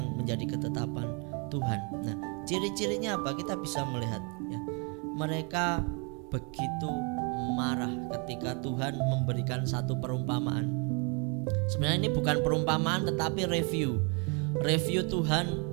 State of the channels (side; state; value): left; quieter; 34.8 dB